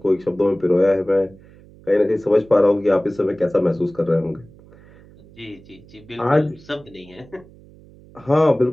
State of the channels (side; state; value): right; noise; hum, 24 dB below the sound